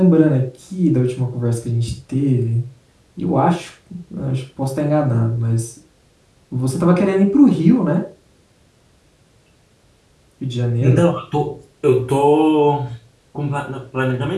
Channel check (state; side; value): identical; both; correlation 1.00